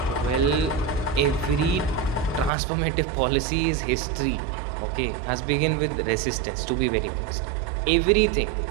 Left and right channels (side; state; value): left; drops out; at 2.5 s